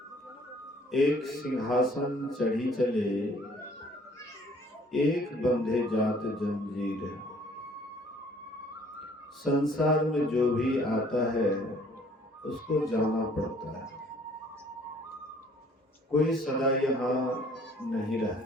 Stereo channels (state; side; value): normal; both; correlation 0.58